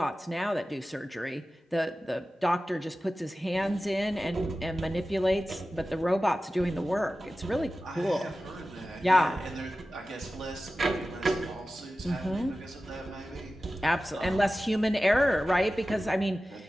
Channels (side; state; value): both; normal; correlation 0.95